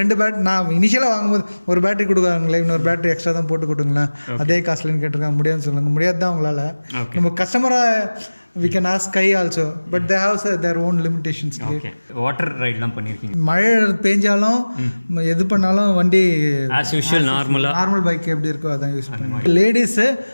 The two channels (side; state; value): both; inverted; correlation -1.00